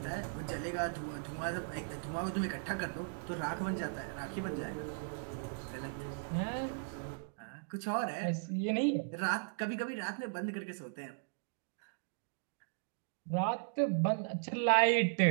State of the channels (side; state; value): left; silent; digital silence